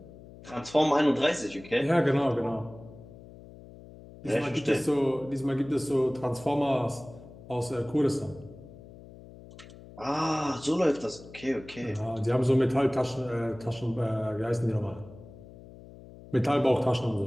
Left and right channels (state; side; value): noise; left; hum, 18 dB below the sound